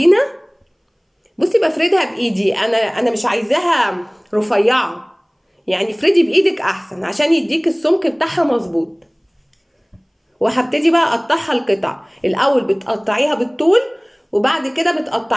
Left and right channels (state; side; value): identical; both; correlation 1.00